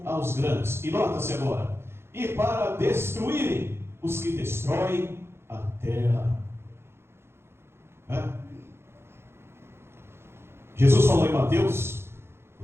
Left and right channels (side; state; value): left; late; 0.12 ms